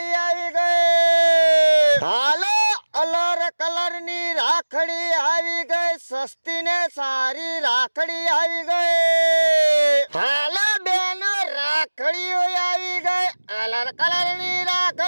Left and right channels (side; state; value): both; inverted; correlation -1.00